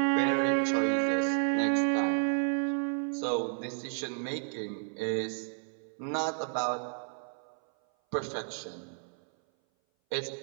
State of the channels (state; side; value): silent; left; 57 dB below the other